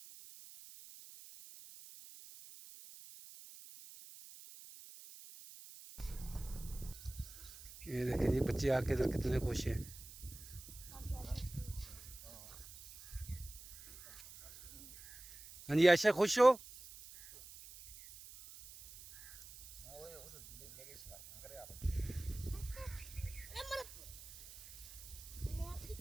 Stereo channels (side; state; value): right; noise; hiss, 16 dB below the sound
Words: ये देखिए ये बच्चे आके इधर कितने खुश हैं। हाँ जी आयशा खुश हो?